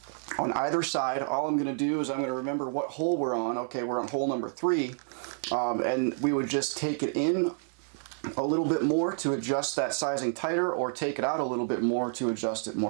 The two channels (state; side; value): silent; left; 58 dB below the other